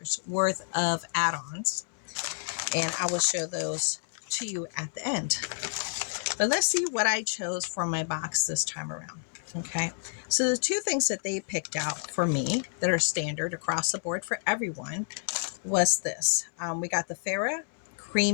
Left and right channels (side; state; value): right; silent; 58 dB below the other